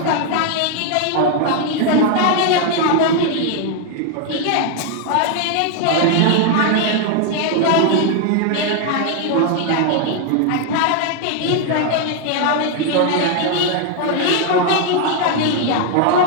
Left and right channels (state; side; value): different; both; correlation 0.00